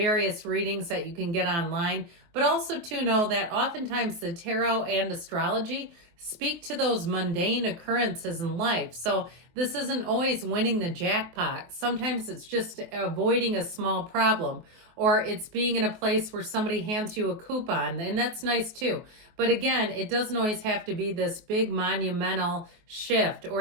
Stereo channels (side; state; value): left; late; 23 ms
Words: readings that you can get online. But also to know that oftentimes the tarot and astrology speak to those mundane occurrences in life. So this isn't always winning the jackpot. Sometimes it's just avoiding a small problem, or it's being in a place where somebody hands you a coupon, and that's nice too. But again, it doesn't always have to be this big monumental shift